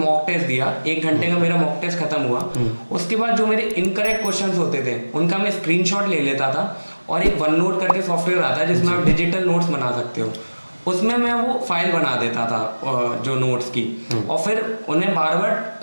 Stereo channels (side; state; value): both; inverted; correlation -1.00